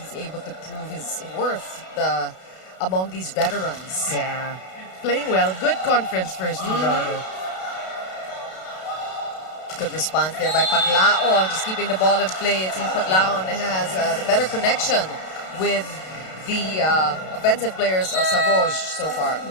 able to prove his worth among these veterans. Yeah. Playing well. Good conference for Steve Rotter. Good response there by Paglaon, just keeping the ball in play. It seems Paglaon has the better connection with the offensive players of Savouge so far.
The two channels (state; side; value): late; right; 32 ms